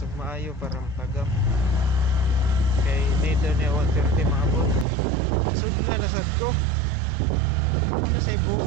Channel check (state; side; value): drops out; left; at 4.9 s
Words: ug maayo para matagam. Kay need niya 130 maabot. Sudla na sad ko. Ano say